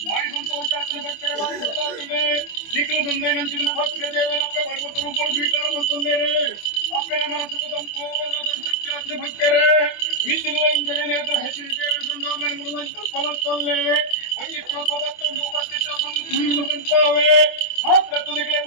ಭಾರಿ ಸಂತೋಷಾತನ ಭಕ್ತರ ಭಾರಿ ಸಂತೋಷ ನಿಖಿಲ ಸಂದಾಯನಂಚಿನ ಭಕ್ತಿಯ ದೇವನಪ್ಪ ಪರ್ವತ ರೂಪರು ಸ್ವೀಕಾರ ಮತ್ತೊಂದೇರೆ ಅಪ್ಪನ ಮನಸ್ಸು ಸಂಪೂರ್ಣ ಸಂತೃಪ್ತಿಯಾತ್ಮ ಭಕ್ತರೇ ಮಿತ್ತಿರುವ ಇಂಜನೆ ನೇತ್ರ ಹೆಚ್ಚಿನ ದೇವರ ಸಂದಾವನೆ ಮುರುವಂತ ಫಲಸ್ತೊಲ್ಲೆ ಒಂಜಿತ್ರ ಪದಕ್ಕೊಂದು ಉಪಸ್ಥಿತ ಒಂದು ಭೂಮಿಗೆ ಬಂದ್ಕೊಳ್ಳವೆ ಮಾತ್ರ ತುದಿಗಳೇ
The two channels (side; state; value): right; late; 24 ms